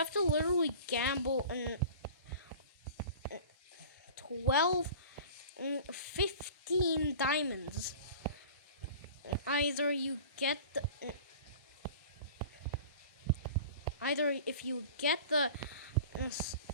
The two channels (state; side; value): inverted; both; correlation -0.41